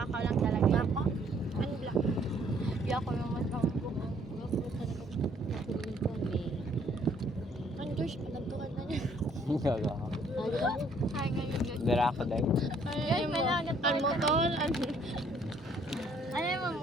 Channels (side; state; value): both; normal; correlation 0.63